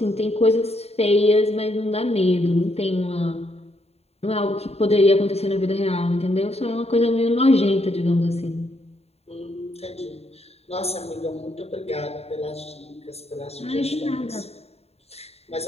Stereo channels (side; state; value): right; late; 0.30 ms